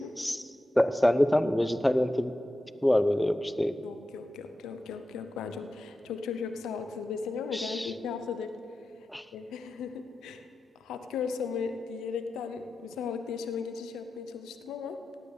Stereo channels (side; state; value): both; normal; correlation 0.92